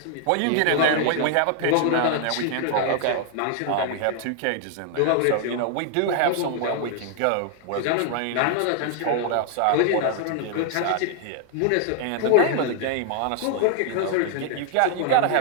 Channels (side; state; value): both; different; correlation 0.00